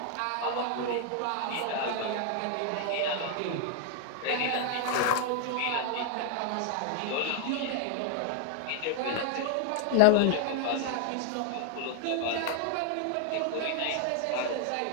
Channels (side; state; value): both; different; correlation 0.00